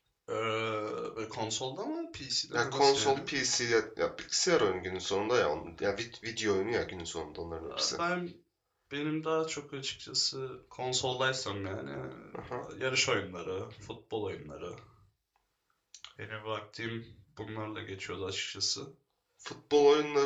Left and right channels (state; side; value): identical; both; correlation 1.00